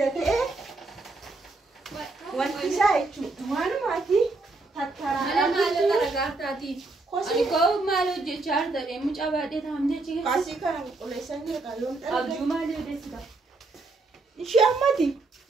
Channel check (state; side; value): quieter; left; 3.4 dB